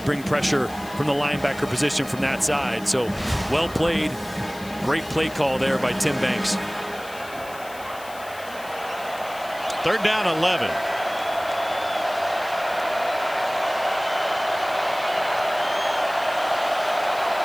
bring pressure from the linebacker position from that side. So well played. Great play call there by Tim Banks. 3rd down 11.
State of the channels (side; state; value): left; noise; hiss, 18 dB below the sound